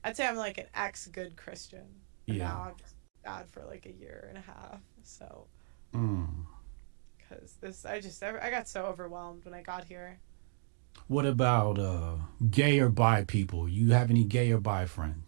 I'd say I'm like an ex-good Christian. And Yeah. now I'm just bad for a year and a half. So. Because I got so overwhelmed when I got here. What about gay or bi people? You have any gay or bi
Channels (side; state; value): left; silent; digital silence